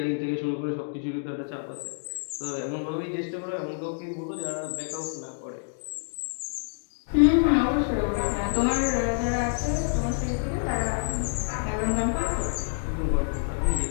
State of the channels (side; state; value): right; silent; digital silence